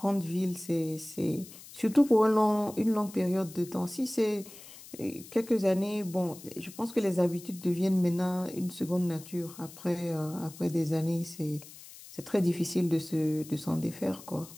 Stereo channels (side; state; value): left; noise; hiss, 18 dB below the sound